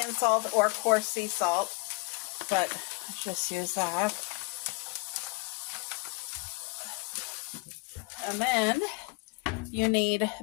salt or coarse sea salt, but let's just use that. And then you need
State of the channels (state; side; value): quieter; right; 28.5 dB